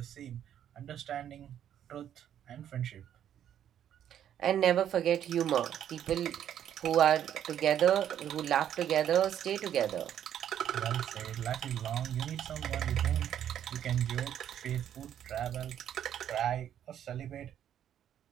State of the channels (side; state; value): left; quieter; 10.1 dB